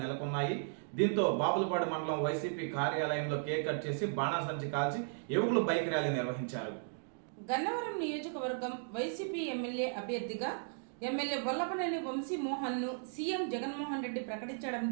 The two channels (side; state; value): left; silent; digital silence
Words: నెలకొన్నాయి. దీంతో బాపులపాడు మండలం వైసీపీ కార్యాలయంలో కేక్ కట్ చేసి బాణాసంచి కాల్చి యువకులు బైక్ ర్యాలీ నిర్వహించారు. గన్నవరం నియోజకవర్గం వైసీపీ ఎమ్మెల్యే అభ్యర్థిగా ఎమ్మెల్యే వల్లభనేని వంశీమోహన్ ను సీఎం జగన్మోహన్ రెడ్డి